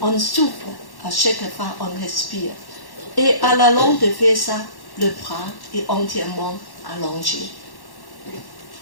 On souffre à chaque fois on respire. Et à la longue de faire ça, le bras est entièrement allongé.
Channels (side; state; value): right; late; 1.1 ms